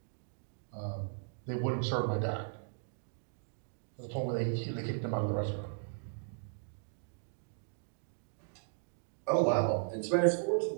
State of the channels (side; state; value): left; silent; digital silence